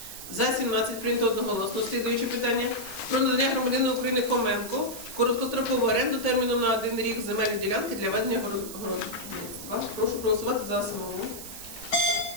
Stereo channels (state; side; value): noise; right; hiss, 11 dB below the sound